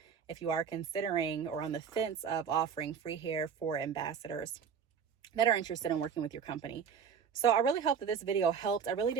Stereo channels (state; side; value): quieter; left; 7.0 dB